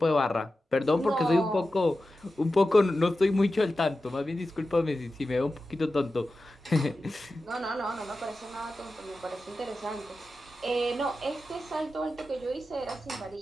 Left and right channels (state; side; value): normal; both; correlation 0.93